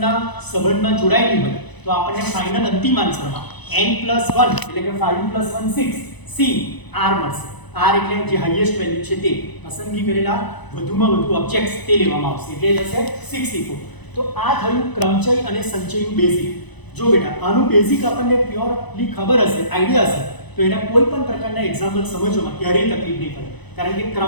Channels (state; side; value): late; right; 1.0 ms